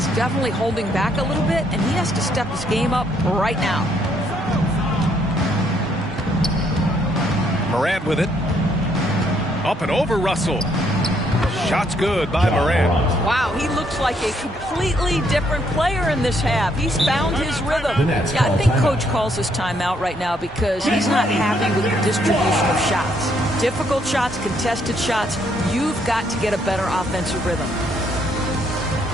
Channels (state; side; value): normal; both; correlation 0.71